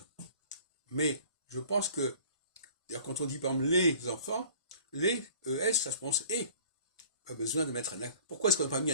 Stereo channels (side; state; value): both; inverted; correlation -0.48